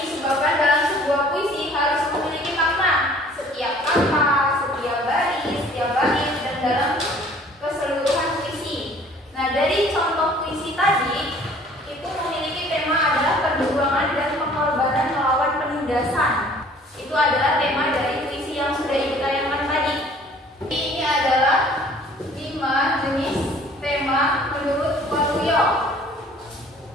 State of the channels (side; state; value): both; normal; correlation 0.53